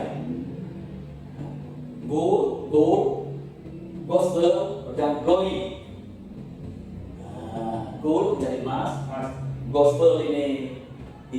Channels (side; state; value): both; identical; correlation 1.00